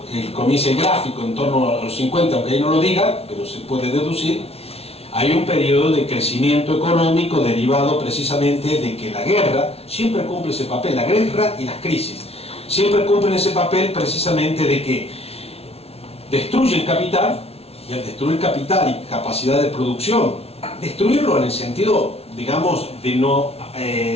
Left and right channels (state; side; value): late; right; 0.30 ms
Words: comienza el gráfico en torno a los 50, aunque ahí no lo diga, pero se puede deducir, hay un periodo de crecimiento económico derivado precisamente de que la guerra siempre cumple ese papel, la guerra y las crisis siempre cumplen ese papel precisamente de que destruyen capital, y al destruir capital y capacidad de producción, destruirlo en el sentido, digamos, de no